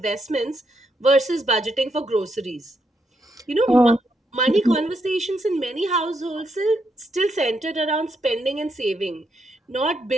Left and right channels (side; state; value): both; normal; correlation 0.79